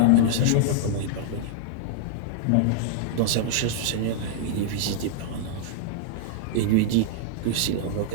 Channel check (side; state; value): both; different; correlation -0.01